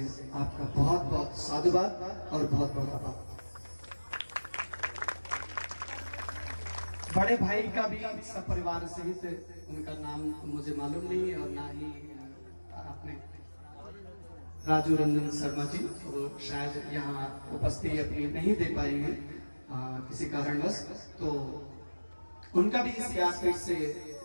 आपका बहुत बहुत साधुवाद और बहुत बहुत आभार। बड़े भाई का भी सब परिवार सहित, उनका नाम मुझे मालूम नहीं और ना ही आपने राजू रंजन शर्मा जी, वो शायद यहाँ उपस्थिति अपनी नहीं दे पाई है किसी कारणवश, तो उनका भी इस व्यासपीठ से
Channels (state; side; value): inverted; both; correlation -1.00